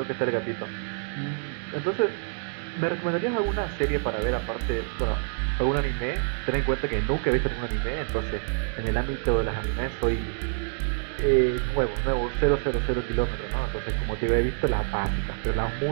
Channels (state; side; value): silent; left; 60 dB below the other